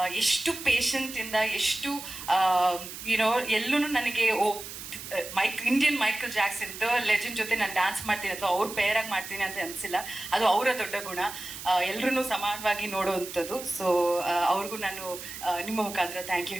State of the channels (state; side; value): noise; right; hiss, 11 dB below the sound